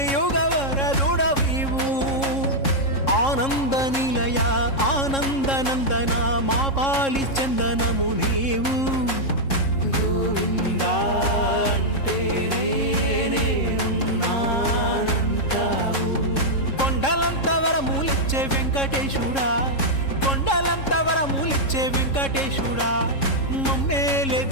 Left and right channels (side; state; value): right; late; 3.7 ms